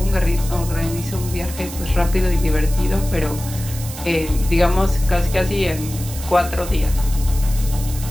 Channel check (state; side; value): noise; right; hiss, 12 dB below the sound